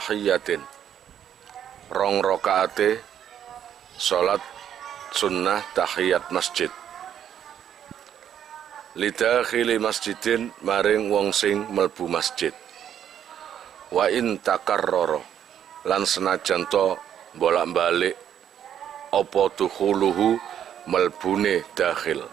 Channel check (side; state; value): left; quieter; 9.6 dB